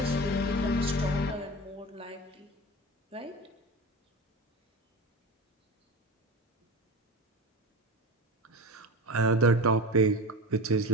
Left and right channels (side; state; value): both; normal; correlation 0.28